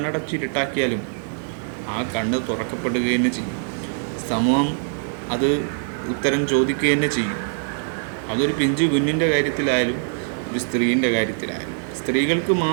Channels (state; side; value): silent; left; 63 dB below the other